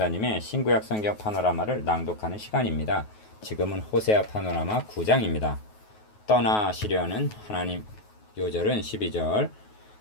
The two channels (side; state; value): right; late; 9.4 ms